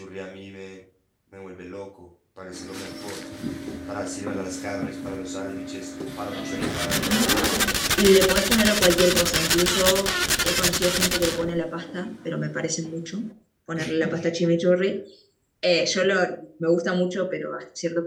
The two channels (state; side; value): identical; both; correlation 1.00